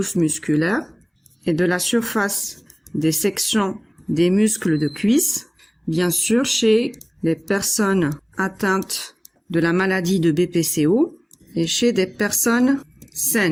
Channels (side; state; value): both; identical; correlation 1.00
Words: musculaires et de la surface des sections des muscles de cuisse, bien sûr chez les personnes atteintes de la maladie de BPCO et chez des personnes